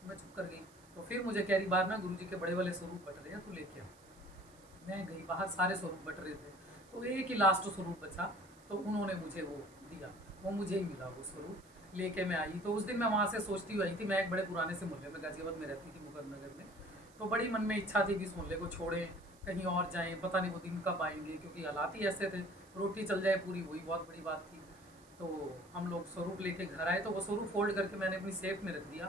तो मैं चुप कर गई। तो फिर मुझे कह रही बाहर ना गुरुजी के बड़े वाले स्वरूप बट रहे हैं, तू लेके आ। मैं गई बाहर, सारे स्वरूप बट रहे थे, तो एक ही लास्ट स्वरूप बचा, तो उन्होंने मुझे वो दिया, वो मुझे ही मिला वो स्वरूप। लेके मैं आई। तो उस दिन मैं वहाँ से सोचती हुई आई थी, मैं एक बड़े पुराने से मोहल्ले में गाजियाबाद में रहती थी, मुकरनगर में। तो बड़ी मन में इच्छा थी कि इस मोहल्ले को छोड़ें, कहीं और जाएं, पता नहीं वो दिन कब आएंगे, क्योंकि हालात ही ऐसे थे, रोटी चल जाए पूरी, वही बहुत बड़ी बात थी। तो हम लोग स्वरूप लेके घर आए, तो वो स्वरूप फोल्ड करके मैंने अपनी सेफ में रख दिया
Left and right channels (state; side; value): noise; right; hiss, 27 dB below the sound